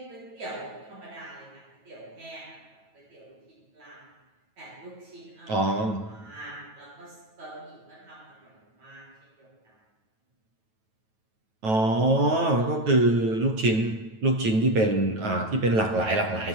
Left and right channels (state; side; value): late; left; 9.2 ms